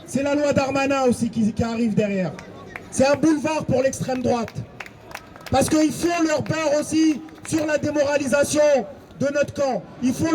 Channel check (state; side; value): identical; both; correlation 1.00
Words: C'est la loi Darmanin aussi qui arrive derrière. C'est un boulevard pour l'extrême droite. Parce qu'ils font leur beurre aussi sur la démoralisation de notre camp. Ils font